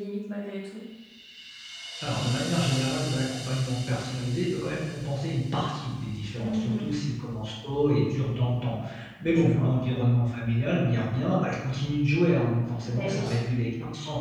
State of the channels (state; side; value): identical; both; correlation 1.00